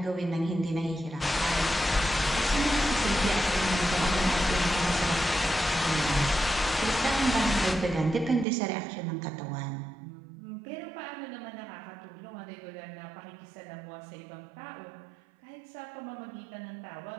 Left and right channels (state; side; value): drops out; left; at 8.5 s